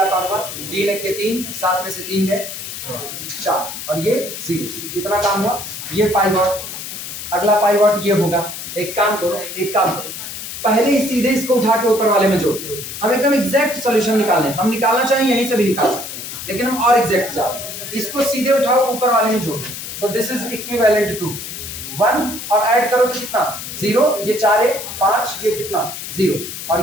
काम हुआ, 3 1 के 3, 7 में से 3 गए 4, और ये 0। कितना काम हुआ, ये पाइवॉट। अगला पाइवॉट ये होगा, एक काम करो, पहले ही सीधे इसको उठा के ऊपर वाले में जोड़ दो। हम एकदम एग्जैक्ट सॉल्यूशन निकालें, हम निकालना चाहें यहीं से भी निकाल सकते हैं, लेकिन हम और एग्जैक्ट जाते, इसको सीधे उठाओ ऊपर वाले में जोड़ दो, तो दिस इज इक्विवेलेंट टू 1, और ऐड करो तो कितना 0, ये 4 है 5, ये कितना 0,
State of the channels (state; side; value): noise; left; hiss, 8 dB below the sound